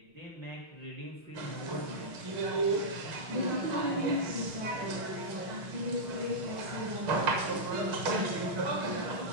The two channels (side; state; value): left; late; 6.5 ms